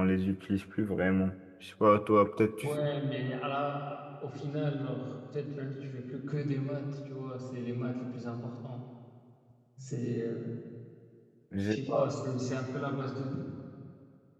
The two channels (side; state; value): both; identical; correlation 1.00